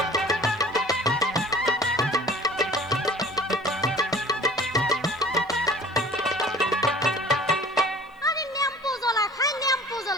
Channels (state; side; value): normal; both; correlation 0.46